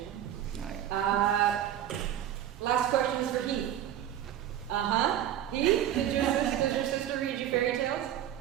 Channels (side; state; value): left; quieter; 11.2 dB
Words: Last question is for Heath. Heath, did your sister read you fairy tales?